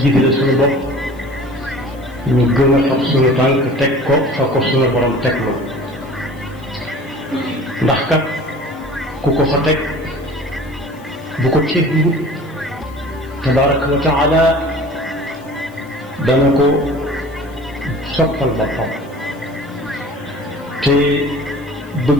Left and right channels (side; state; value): left; noise; hiss, 28 dB below the sound